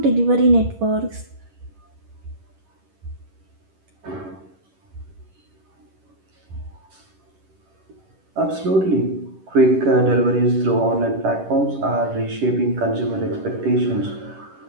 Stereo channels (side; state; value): left; late; 11 ms